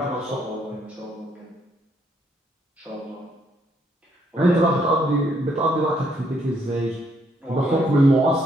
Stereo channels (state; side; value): normal; both; correlation 0.71